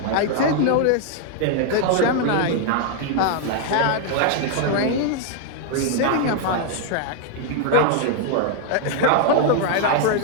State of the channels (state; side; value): different; both; correlation 0.00